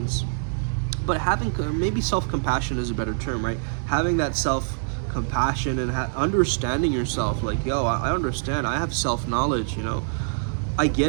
But having, maybe self-compassion is a better term, right? Having that self-compassion and understanding yourself, like, yo, I understand, I have self-knowledge, you know, I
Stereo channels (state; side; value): silent; left; digital silence